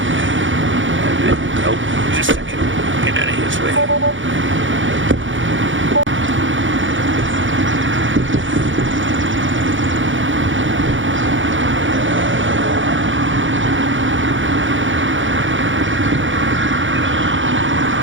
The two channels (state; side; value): late; left; 0.56 ms